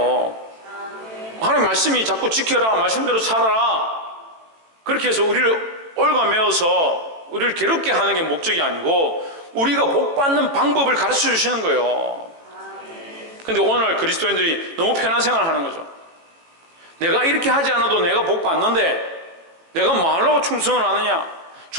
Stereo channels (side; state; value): left; late; 18 ms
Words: 하나님 말씀이 자꾸 지켜라, 말씀대로 살아라, 그렇게 해서 우리를 얽어매어서 우리를 괴롭게 하는 게 목적이 아니고 우리가 복받는 방법을 가르쳐 주시는 거예요. 근데 오늘날 그리스도인들이 너무 편한 생활을 하는 거죠. 내가 이렇게 하지 않아도 내가 복받는데 내가 뭐 하려고 충성을 하느냐?